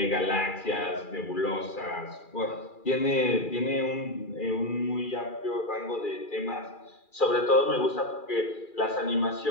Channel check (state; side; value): late; right; 2.4 ms